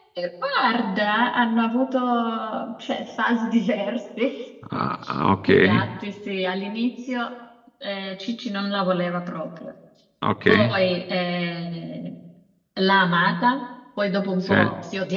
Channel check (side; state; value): both; identical; correlation 1.00